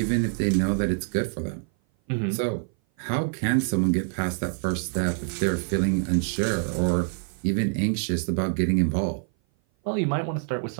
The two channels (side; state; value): left; silent; 57 dB below the other